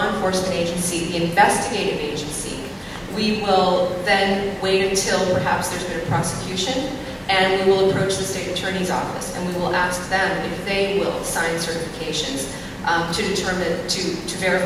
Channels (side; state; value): both; identical; correlation 1.00